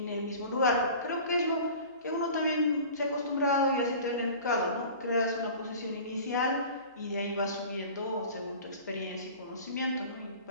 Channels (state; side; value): inverted; both; correlation -0.41